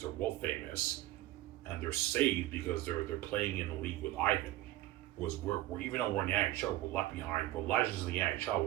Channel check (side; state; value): left; quieter; 15.9 dB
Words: They're world famous, and they're saved because they're playing in a league with Ivan. Was we're even though we're in the NHL, we're left behind. We're legends in the NHL.